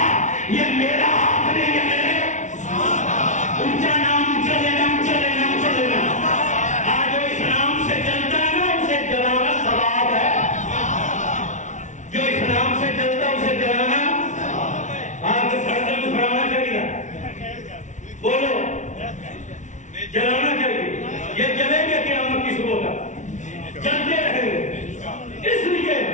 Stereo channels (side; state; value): right; late; 0.36 ms